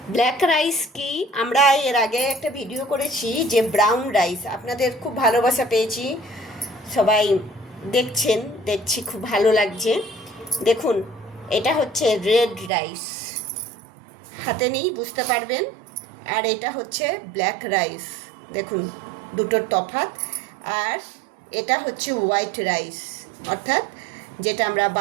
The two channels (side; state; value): left; drops out; at 12.7 s